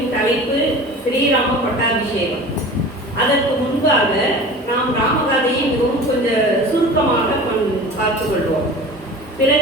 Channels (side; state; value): both; normal; correlation 0.38